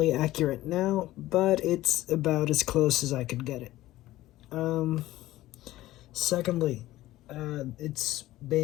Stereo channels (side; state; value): right; quieter; 16.1 dB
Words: accurate now, but it's about as close as I could get it. Secondly, it's